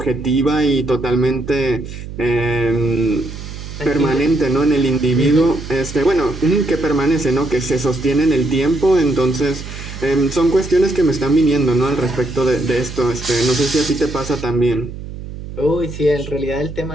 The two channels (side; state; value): right; noise; hum, 11 dB below the sound